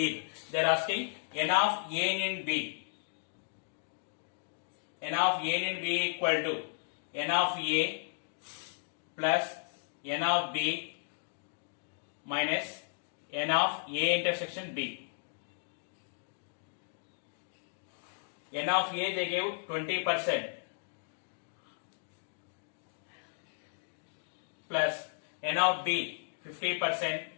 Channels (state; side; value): silent; right; digital silence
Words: They are asking n of A in B. N of A in B equal to n of A plus n of B minus n of A intersection B. N of A they gave 20% plus n of B 50%,